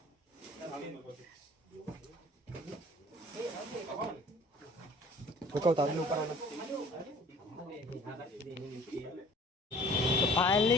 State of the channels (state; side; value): normal; both; correlation 0.50